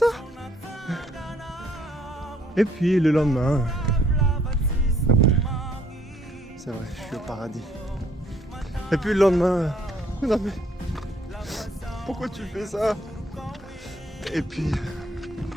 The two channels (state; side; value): normal; both; correlation 0.66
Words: Et puis le lendemain, c'est vrai, je suis au paradis. Et puis le lendemain, non mais, pourquoi tu fais ça? Et puis